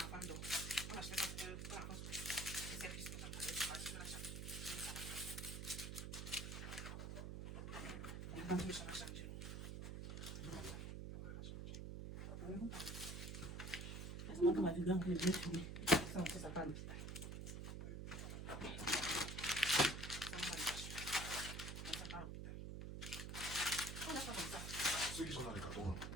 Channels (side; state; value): right; noise; hum, 5 dB below the sound